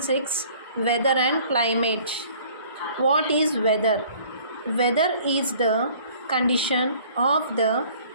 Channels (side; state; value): both; inverted; correlation -0.53